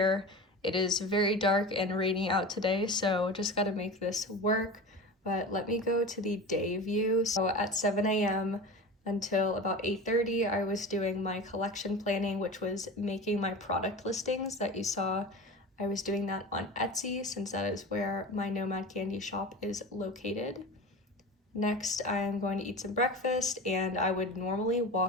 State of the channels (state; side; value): normal; both; correlation 0.31